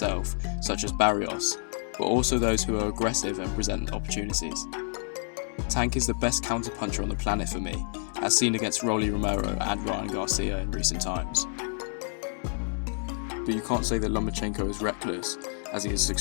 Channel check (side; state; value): right; silent; 59 dB below the other